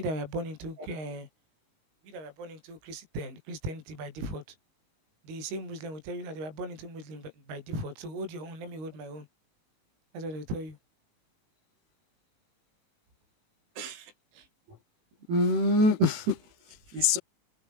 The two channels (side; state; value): left; late; 18 ms